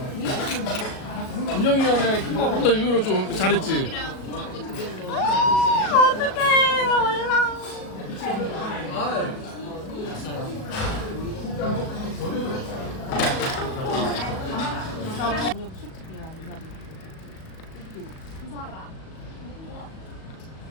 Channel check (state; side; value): late; right; 37 ms